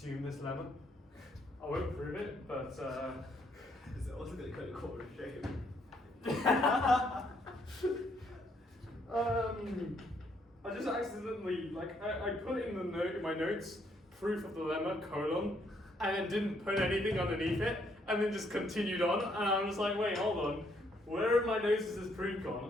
this lemma. I won't prove it, but Is it also going to call a shame? I just accidentally, I put in the note in my notes, proof of the lemma, colon, and then didn't put anything underneath it, and then just continued on, and I'm just like, wait, hold on, where in my notes is this proof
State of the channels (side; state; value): both; normal; correlation 0.71